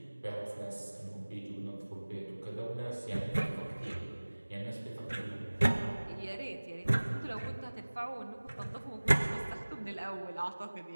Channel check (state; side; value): inverted; both; correlation -1.00